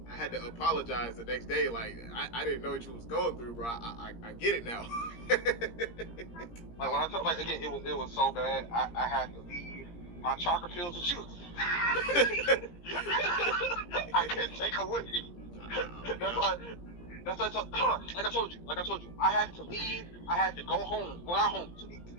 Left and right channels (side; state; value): right; late; 17 ms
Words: I had to apologize the next day. Like I didn't know what you was going through, bro. I get it now. Like when I told, like again, it was so bad. I had to leave my chocolate pills with shoes. I couldn't take them with me. That's why like I told you. I had to leave. I had to go home. Well, not home to